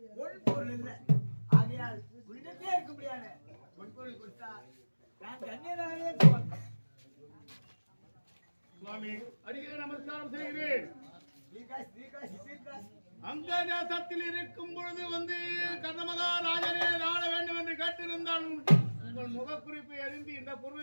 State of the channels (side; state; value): both; inverted; correlation -1.00